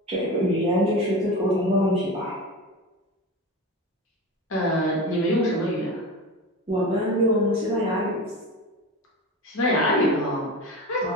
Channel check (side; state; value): both; normal; correlation 0.28